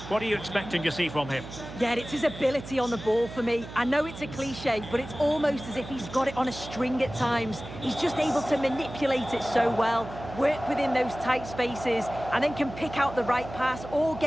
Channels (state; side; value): noise; right; hum, 13 dB below the sound